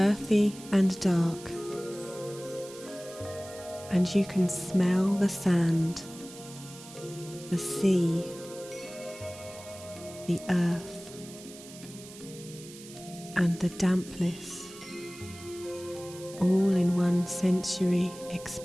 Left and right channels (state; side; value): noise; right; hiss, 17 dB below the sound